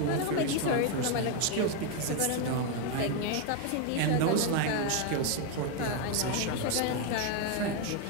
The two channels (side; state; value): both; different; correlation 0.01